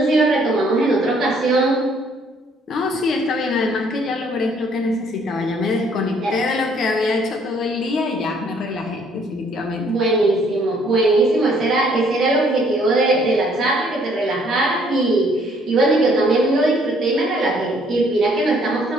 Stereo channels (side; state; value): both; normal; correlation 0.63